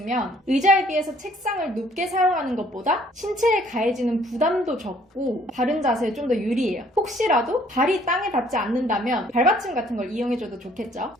의자에 비해서 책상을 높게 사용하는 것보다 신체에 가해지는 부담도 적고 바른 자세에 좀 더 유리해요. 혹시라도 발이 땅에 닿지 않는다면 발받침 같은 걸 이용해줘도 좋겠죠.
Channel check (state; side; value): normal; both; correlation 0.60